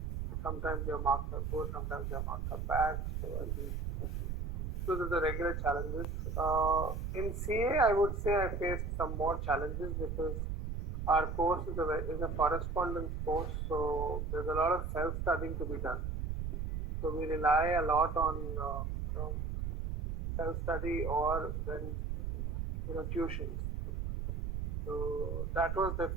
sometimes your marks are good, sometimes your marks are bad. So I think those are the regular challenges. In CA, I would say I faced some more challenges because our course is a correspondence course, so there's a lot of self-studying to be done. So we rely a lot on self-study or then tuitions. So that was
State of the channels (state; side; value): noise; right; rumble, 2 dB below the sound